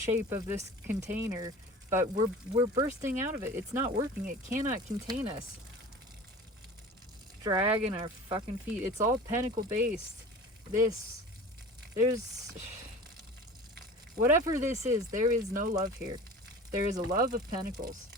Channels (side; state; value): both; normal; correlation 0.38